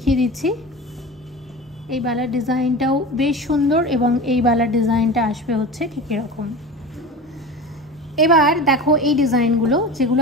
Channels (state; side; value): normal; both; correlation 0.31